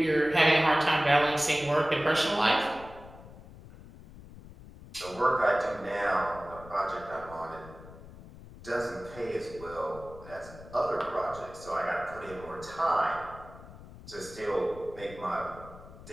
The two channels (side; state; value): left; noise; rumble, 17 dB below the sound